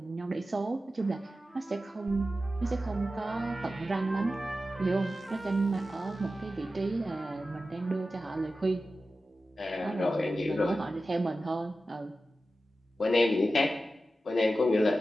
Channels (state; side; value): normal; both; correlation 0.93